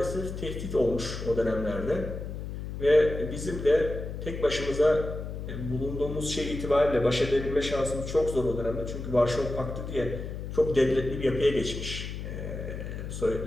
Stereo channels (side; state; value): left; noise; hum, 7 dB below the sound